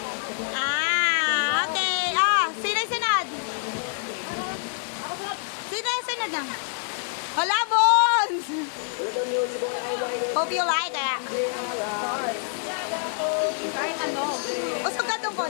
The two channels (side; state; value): right; silent; 61 dB below the other